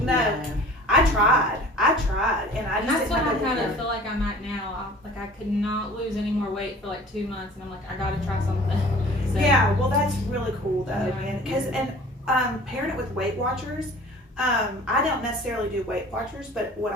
No. I tried, and I And just that's didn't what I have kind it. of feel like I'm at now. I could not lose any more weight for like 2 months, and I'm like, I gotta try something. So, Yeah, well, that's really cool though, Yeah. man. Because pairing it with Weight Watchers, I don't necessarily do Weight Watchers, but what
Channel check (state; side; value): normal; both; correlation 0.46